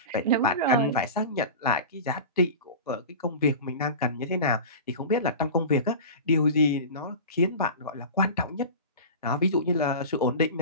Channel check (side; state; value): both; inverted; correlation -0.32